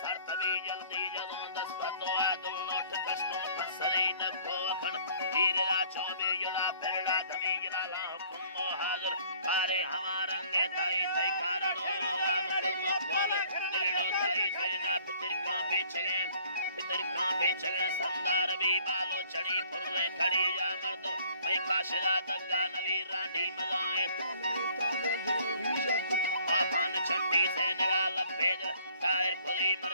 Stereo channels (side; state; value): both; inverted; correlation -0.57